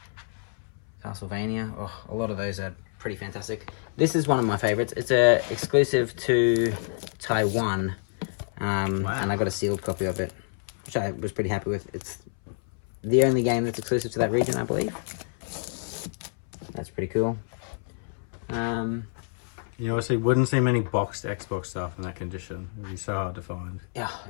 Castlevania. Oh, a lot of those are pretty fantastic. This is one of my favorites. It's a exclusive to Taiwan. And I got a sealed copy of it, which I was pretty happy with. It's the only game that's exclusive to that region, I believe. That's pretty cool. You obviously wouldn't see many boxed Xbox stuff in that condition. It'd be so hard to find. Yeah,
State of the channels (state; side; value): silent; right; 59 dB below the other